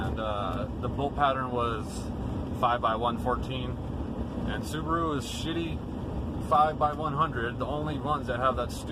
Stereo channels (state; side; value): identical; both; correlation 1.00